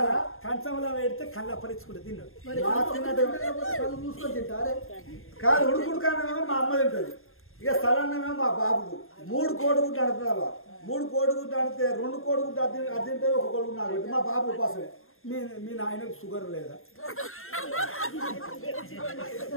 కంచంలో పెడితే కళ్ళు అప్పరించుకుంటే తిన్నాడు కళ్ళు మూసుకొని తింటారే కాదు ఉడుకుడుకానేమో మా అమ్మ తింటది ఇక స్థలాన్నేమో మా బాబుకు 3 కోడిగుడ్లు అడుగుతున్నావా 3 కోడిగుడ్లు అడితే 2 కోడిగుడ్లు అది తింటే 1 కోడిగుడ్డు నాకు మా బాబు ఉపాసమే మీ నాయనకు షుగర్ లేదా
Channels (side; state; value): right; late; 0.61 ms